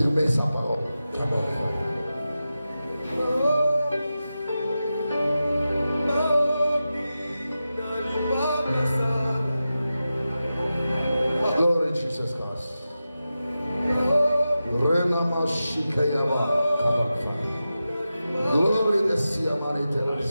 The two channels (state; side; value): inverted; both; correlation -0.92